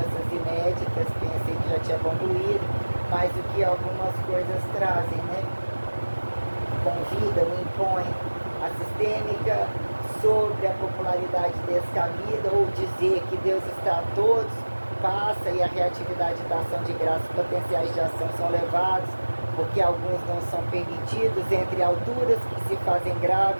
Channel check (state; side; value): inverted; both; correlation -1.00